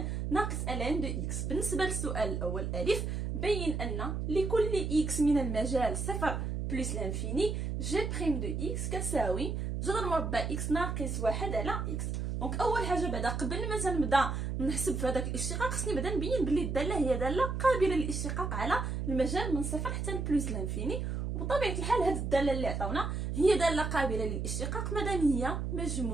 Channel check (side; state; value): right; noise; hum, 2 dB below the sound